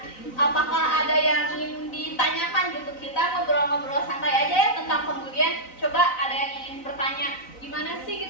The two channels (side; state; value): right; late; 3.9 ms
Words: apakah ada yang ingin ditanyakan gitu? Kita ngobrol-ngobrol santai aja ya tentang pembulian. Coba ada yang ingin bertanya, gimana sih